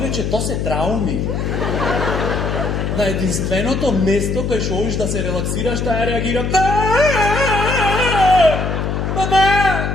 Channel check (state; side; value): noise; left; hum, 1 dB below the sound